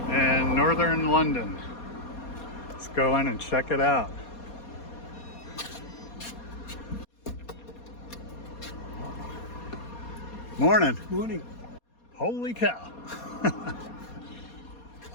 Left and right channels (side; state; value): right; late; 4.2 ms